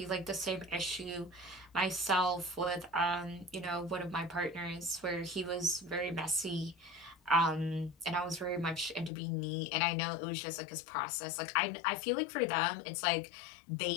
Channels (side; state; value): right; drops out; at 9.1 s